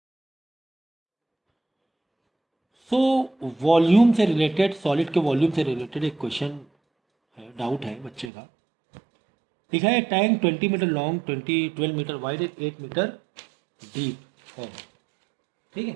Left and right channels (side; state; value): left; drops out; at 8.3 s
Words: सो वॉल्यूम से रिलेटेड, सॉलिड के वॉल्यूम से रिलेटेड एक क्वेश्चन है, डाउट है बच्चे का। लिखा है tank 20 metre long, 12 metre wide, 8 metre deep है। ठीक है,